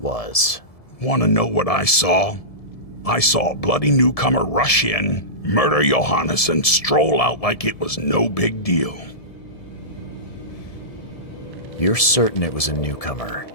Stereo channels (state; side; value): late; right; 1.7 ms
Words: Want to know what I saw? I saw a bloody newcomer rush in, murder Johannes, and stroll out like it was no big deal. You're certain it was a newcomer.